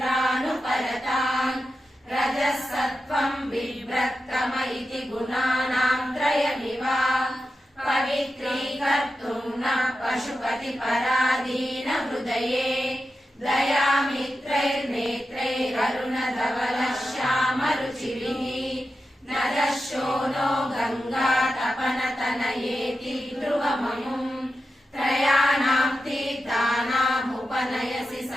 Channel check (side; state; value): both; normal; correlation 0.91